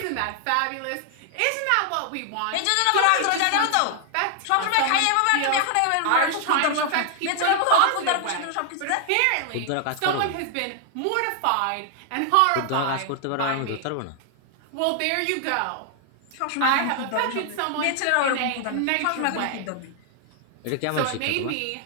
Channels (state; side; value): different; both; correlation 0.00